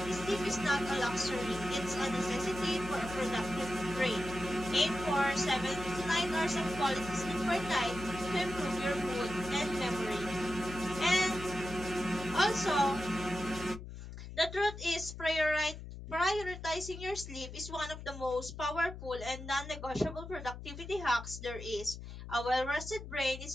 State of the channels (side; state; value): left; noise; hum, 11 dB below the sound